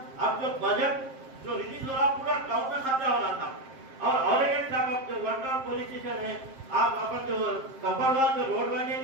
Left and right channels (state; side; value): late; left; 7.5 ms